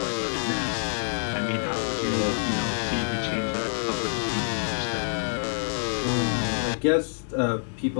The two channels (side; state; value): right; silent; 60 dB below the other